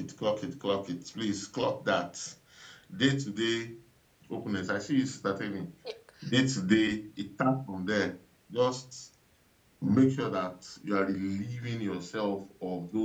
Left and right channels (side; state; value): both; identical; correlation 1.00